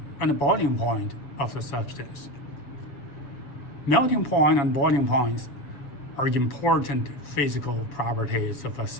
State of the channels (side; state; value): right; late; 7.1 ms